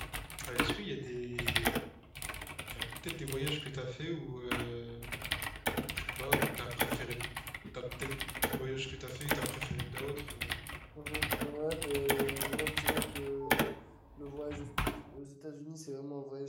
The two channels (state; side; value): identical; both; correlation 1.00